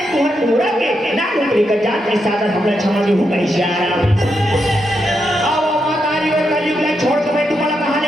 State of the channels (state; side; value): normal; both; correlation 0.83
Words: पूरा के ना नौकरी का जान के साथ हमने क्षमा दी हूँ छोड़ के मैं तुम्हारा कहानी